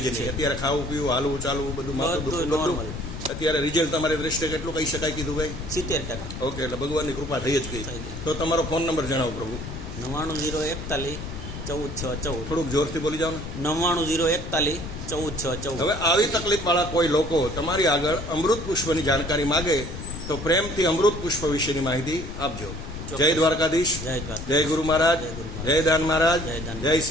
જ નહીં. અત્યારે ખાવું પીવું, હાલવું ચાલવું બધું માથું દુખવું બધું. નોર્મલ. અત્યારે રિઝલ્ટ તમારી દ્રષ્ટિએ કેટલું કહી શકાય કીધું ભાઈ? 70%. ઓકે, એટલે ભગવાનની કૃપા થઈ જ ગઈ. થઈ ગઈ. તો તમારો ફોન નંબર જણાવો પ્રભુ. 99-041-14-6-14. થોડુંક જોરથી બોલી જાઓ ને. 99-041-14-6-14. હવે આવી તકલીફ વાળા કોઈ લોકો તમારી આગળ અમૃત પુષ્પની જાણકારી માગે તો પ્રેમથી અમૃત પુષ્પ વિશેની માહિતી આપજો. જય દ્વારકાધીશ. જય દ્વારકા. જય ગુરુ મહારાજ. જય ગુરુ મહારાજ. જય દાન મહારાજ. જય દાન જય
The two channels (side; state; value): left; noise; rumble, 9 dB below the sound